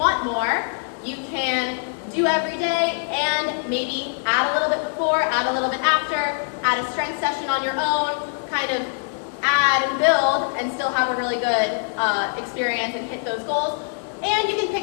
more, you can do every day and maybe add a little bit before, add a little bit after, add a strength session on your own, kind of add and build and still have a really good experience and hit those goals. And you can pick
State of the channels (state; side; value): silent; right; 63 dB below the other